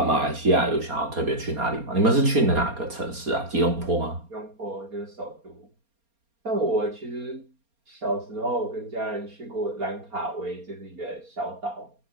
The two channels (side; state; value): left; late; 4.3 ms